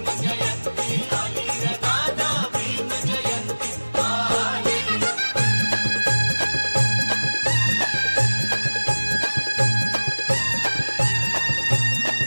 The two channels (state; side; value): inverted; both; correlation -1.00